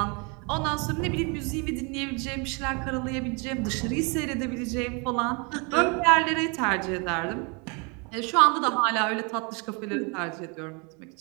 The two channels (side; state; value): left; quieter; 32.5 dB